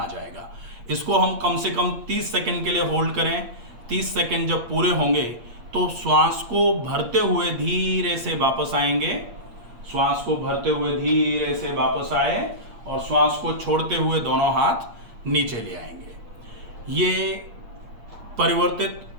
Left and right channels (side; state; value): left; late; 8.6 ms